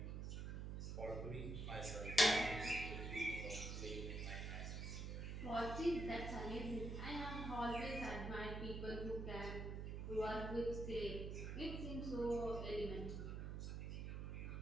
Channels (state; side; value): noise; right; hum, 3 dB below the sound